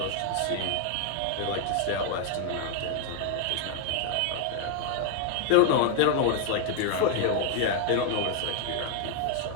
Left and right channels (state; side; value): different; both; correlation 0.00